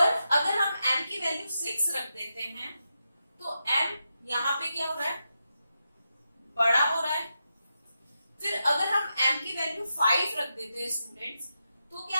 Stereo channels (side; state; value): both; inverted; correlation -0.87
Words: अगर हम M की वैल्यू 6 रख देते हैं तो M यहाँ पे क्या हो रहा है, बड़ा हो रहा है। फिर अगर हम M की वैल्यू 5 रख देते हैं स्टूडेंट्स तो